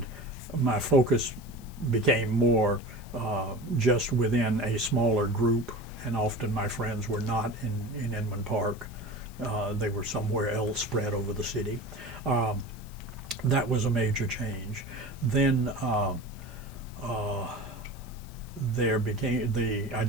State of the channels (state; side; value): noise; left; hiss, 23 dB below the sound